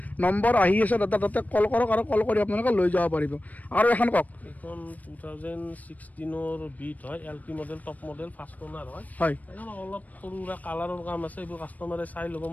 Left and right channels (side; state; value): right; late; 0.075 ms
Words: নম্বৰ আহি আছে দাদা তাতে কল কৰক আৰু কল কৰি আপোনালোকে লৈ যাব পাৰিব আৰু এখন কওক এইখন 2016 বিট হয় LT model top model first owner হয় এখন অলপ সৰু কালাৰৰ কাম আছে এইবোৰ কাষ্টমাৰে চাই ল'ব